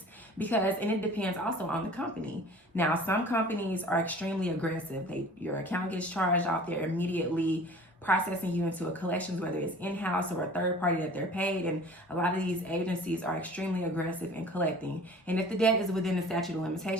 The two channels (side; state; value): both; normal; correlation 0.45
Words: And it depends also on the company. Now, some companies are extremely aggressive. Your account gets charged off, they're immediately processing you into a collections, whether it's in-house or a third party that they're paid. And a lot of these agencies are extremely aggressive in collecting. And if the debt is within the statute of